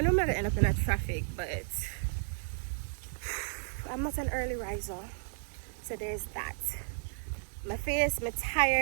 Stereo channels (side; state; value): left; silent; digital silence